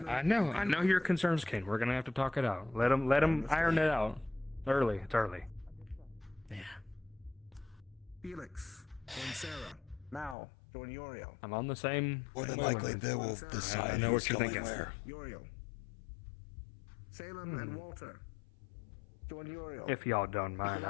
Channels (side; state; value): right; drops out; at 10.4 s